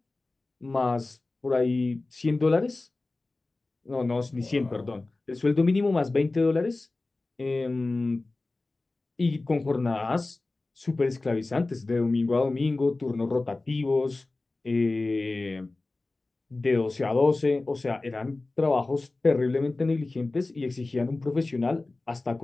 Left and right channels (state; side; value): quieter; right; 3.2 dB